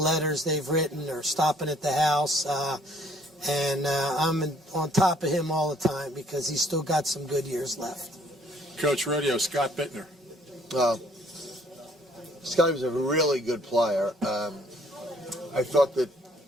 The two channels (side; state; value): both; normal; correlation 0.61